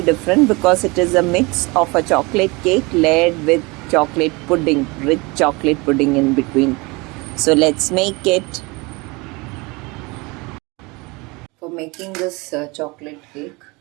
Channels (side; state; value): left; quieter; 25.9 dB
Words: because it is a mix of a chocolate cake layered with chocolate pudding, rich chocolate pudding in between. So let's make it. For making this chocolate cake,